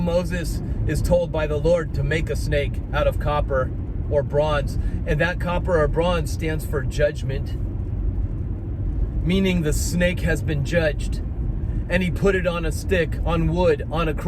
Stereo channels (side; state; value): both; identical; correlation 1.00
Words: is told by the Lord to make a snake out of copper or bronze, and that copper or bronze stands for judgment, meaning the snake has been judged, and he put it on a stick, on wood, on a